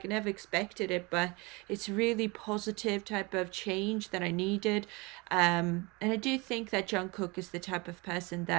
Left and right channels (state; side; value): quieter; left; 26.3 dB